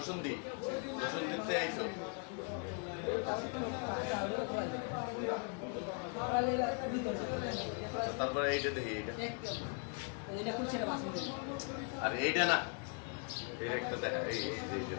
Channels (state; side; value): quieter; right; 36.4 dB